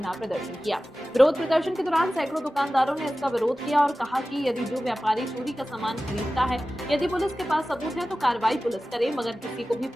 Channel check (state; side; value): normal; both; correlation 0.95